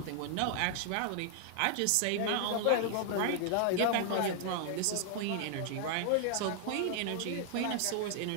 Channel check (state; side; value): different; both; correlation 0.00